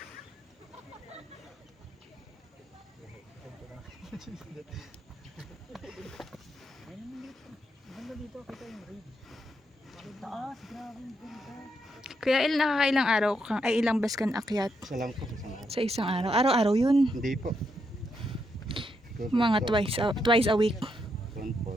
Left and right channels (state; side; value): normal; both; correlation 0.80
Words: Taas, grabe yung ganda. Kuya Il, nakakailang araw kang, ay ilang bus kan akyat Isa lang po. Isang araw. sa isang araw? Araw-araw yun. Hindi po. Mga twice a week. Yun po.